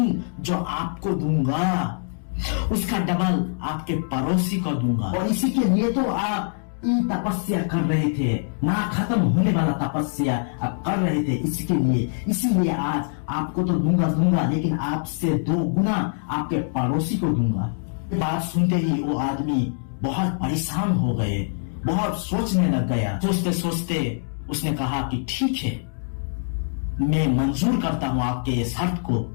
जो आपको दूंगा उसका डबल आपके पड़ोसी को दूंगा। और इसी के लिए तो आप तपस्या कर रहे थे, ना खत्म होने वाला तपस्या आप कर रहे थे, इसके लिए, इसीलिए आज आपको तो दूंगा, लेकिन आपसे 2 गुना आपके पड़ोसी को दूंगा। बात सुनते ही वो आदमी बहुत परेशान हो गए, बहुत सोचने लग गया। सोचते सोचते उसने कहा कि ठीक है, मैं मंजूर करता हूं आपके ये शर्त को।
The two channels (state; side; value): silent; right; digital silence